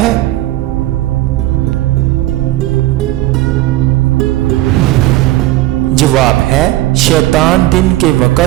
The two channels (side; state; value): left; quieter; 16.4 dB